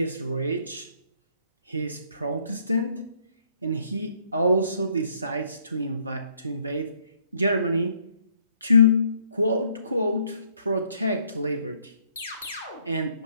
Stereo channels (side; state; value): both; inverted; correlation -0.66